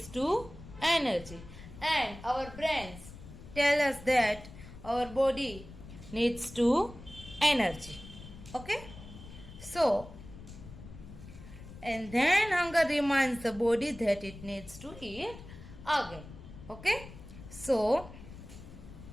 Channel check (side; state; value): left; noise; rumble, 15 dB below the sound